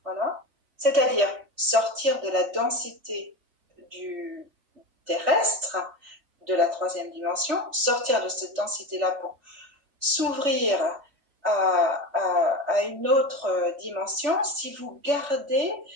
voilà, c'est-à-dire sortir de la densité du terrestre, de la troisième dimension, sortir de cette densité-là pour s'ouvrir à une autre dimension si vous gardez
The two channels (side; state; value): left; late; 3.5 ms